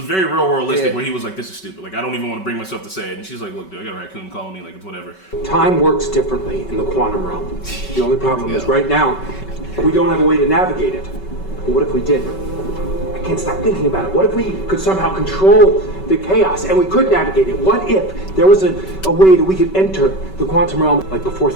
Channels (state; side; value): late; right; 5.3 ms